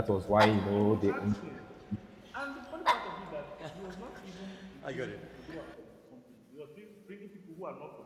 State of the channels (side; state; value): both; identical; correlation 1.00